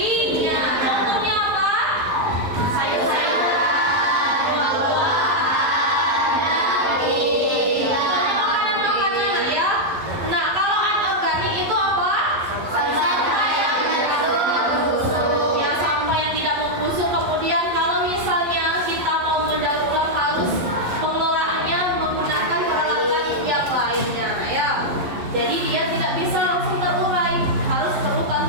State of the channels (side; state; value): left; late; 11 ms